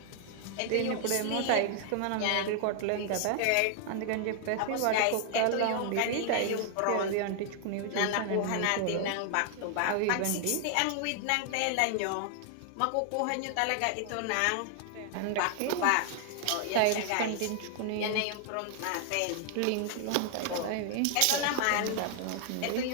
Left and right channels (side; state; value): both; different; correlation 0.00